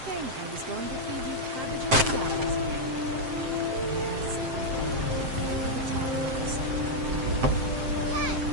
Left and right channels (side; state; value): left; late; 7.7 ms